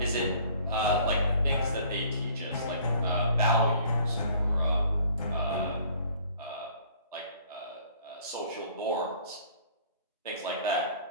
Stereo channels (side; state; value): both; inverted; correlation -0.54